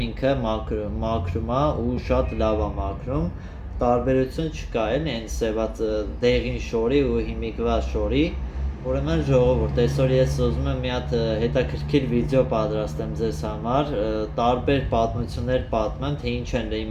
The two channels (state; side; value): identical; both; correlation 1.00